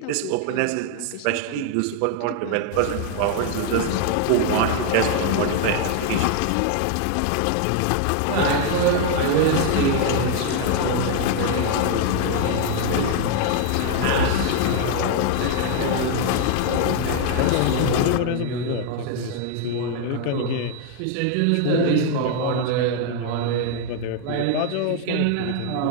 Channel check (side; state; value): both; different; correlation 0.00